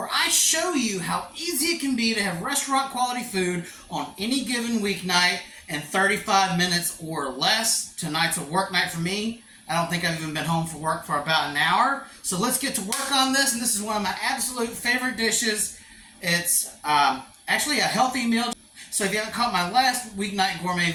I show you how easy it can be to have restaurant quality food on any given weeknight in 35 minutes or less. Tonight's a work night for me. I don't think I've even been home from work for about an hour. So let's get to work on this, and this is one of my absolute favorite dishes. It's actually a healthy meal. So if you haven't caught my last Weeknight Gourmet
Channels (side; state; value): both; identical; correlation 1.00